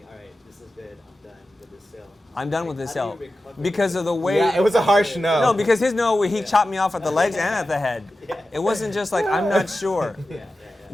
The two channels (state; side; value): normal; both; correlation 0.93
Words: all right, this is good, I'm done with this sale. I'm done with Like, this how sale do you recover because of the way. Yeah, it was a harsh no. No, because his no, he chopped me off at the legs and at the head. Yeah. It wasn't just like I'm not sure. Yeah.